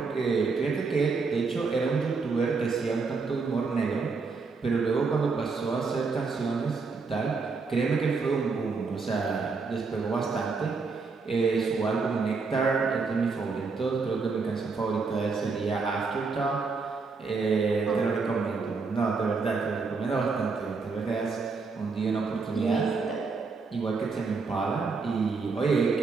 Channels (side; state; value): left; quieter; 4.5 dB